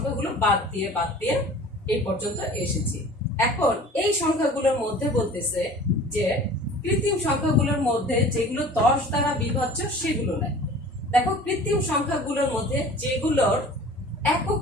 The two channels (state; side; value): normal; both; correlation 0.44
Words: বাদ দিয়ে এই পর্যন্ত এসেছি। এখন এই সংখ্যাগুলোর মধ্যে বলতেছে যে কৃত্রিম সংখ্যাগুলোর মধ্যে যেগুলো 10 দ্বারা বিভাজ্য সেগুলো নাই। দেখো কৃত্রিম সংখ্যাগুলোর মধ্যে যেগুলোর একক